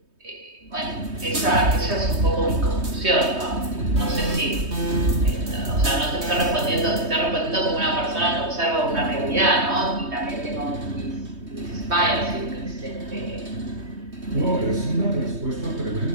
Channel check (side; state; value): left; late; 3.2 ms